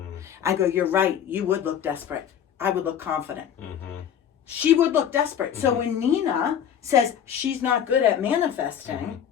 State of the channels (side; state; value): right; quieter; 8.9 dB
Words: I go, you're right. You would look desperate. I would look confident. She would look desperate. So when Nina says she's not good at manifesting,